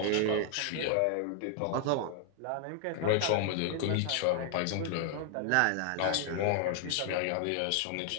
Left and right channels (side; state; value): both; different; correlation 0.00